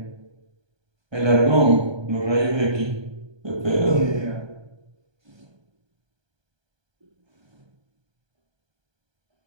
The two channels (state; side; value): late; left; 1.2 ms